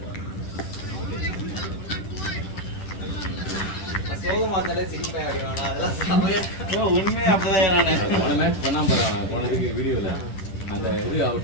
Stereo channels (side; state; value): right; late; 10 ms